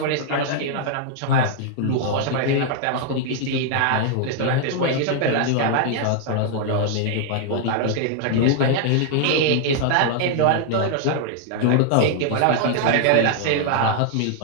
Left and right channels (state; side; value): different; both; correlation 0.00